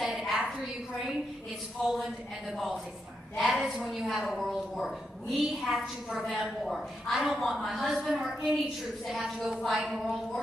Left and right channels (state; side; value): normal; both; correlation 0.83